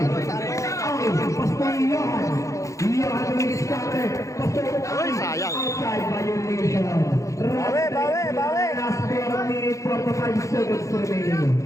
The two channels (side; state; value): right; late; 0.15 ms